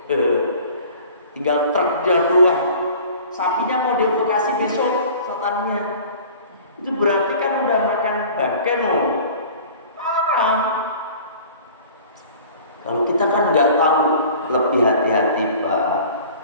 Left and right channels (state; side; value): inverted; both; correlation -0.45